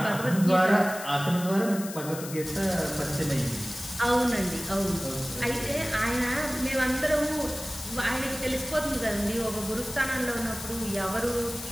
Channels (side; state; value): left; noise; hiss, 11 dB below the sound